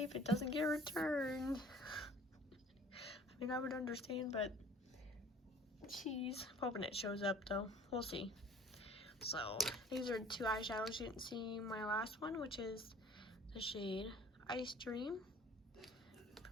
if it doesn't get returned. I mean, I would understand, but jeez, I'm hoping it shows up though. We'll see. So these are 2 eyeshadows. You didn't see my last one, which is the shade Ice Dream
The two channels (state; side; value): normal; both; correlation 0.50